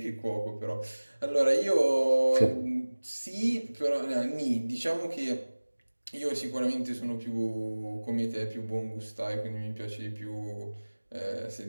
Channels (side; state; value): both; inverted; correlation -1.00